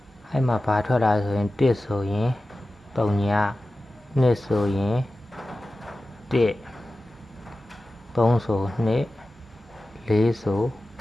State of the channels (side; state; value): both; normal; correlation 0.94